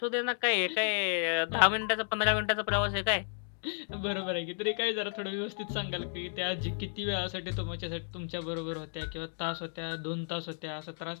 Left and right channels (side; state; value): right; silent; digital silence